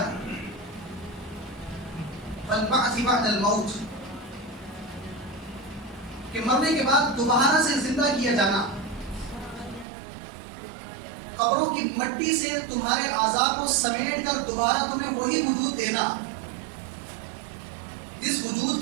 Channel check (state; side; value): drops out; left; at 9.9 s